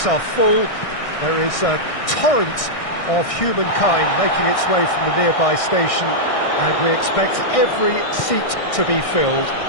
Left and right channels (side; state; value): right; late; 1.6 ms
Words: are full. There is a torrent of humankind making its way from the nearby station, and we expect every seat to be filled.